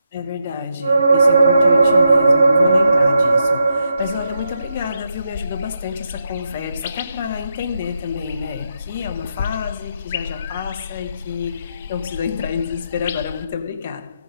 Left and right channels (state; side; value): inverted; both; correlation -0.83